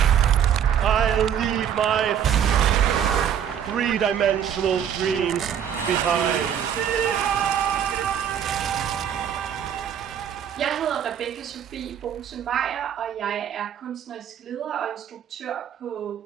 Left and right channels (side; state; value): left; quieter; 8.9 dB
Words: I'll leave my three-dimensional dreams behind. Jeg hedder Rebekka Sofie Bohse Meyer, og jeg er kunstnerisk leder og instruktør på